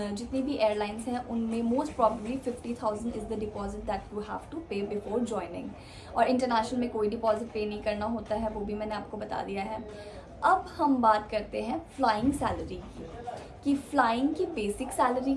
जितनी भी एयरलाइंस हैं, उनमें most probably 50,000 is the deposit that you have to pay before joining. और इंटरनेशनल में कोई डिपॉजिट पे नहीं करना होता है, वो भी मैंने आपको बता दिया है। अब हम बात करते हैं फ्लाइंग सैलरी की, कि फ़्लाइंग की बेसिक सैलरी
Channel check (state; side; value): identical; both; correlation 1.00